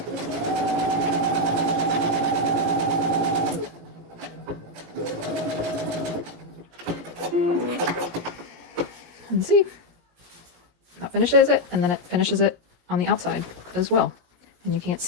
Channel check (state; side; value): late; left; 18 ms